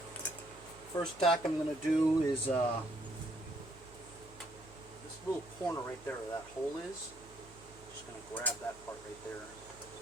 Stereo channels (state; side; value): noise; right; hum, 21 dB below the sound